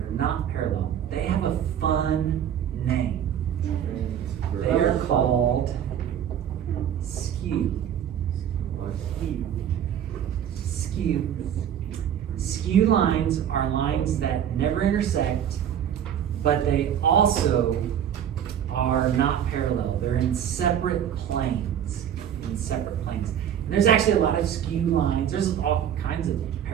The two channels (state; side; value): quieter; left; 9.5 dB